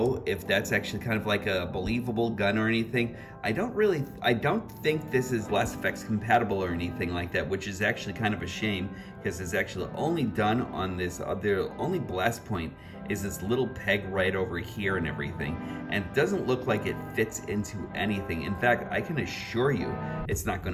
if that's actually kind of like a believable gun or anything. I don't think this is Last Effects compatible or anything like that, which is actually kind of a shame, because it's actually only done on this, the only blast point is this little peg right over here and everything, and it doesn't look like it fits into anything. In fact, I can assure you it's not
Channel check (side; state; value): both; identical; correlation 1.00